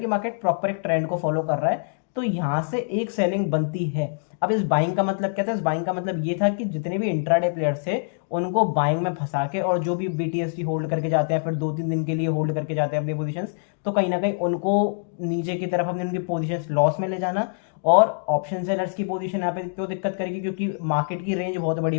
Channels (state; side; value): silent; right; digital silence